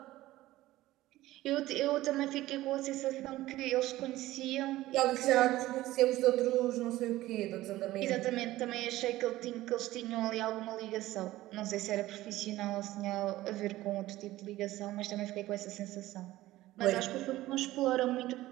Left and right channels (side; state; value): left; quieter; 16.4 dB